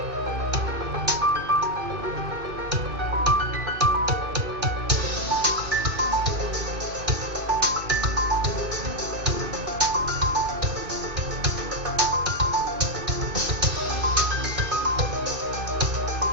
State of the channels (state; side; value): late; left; 2.4 ms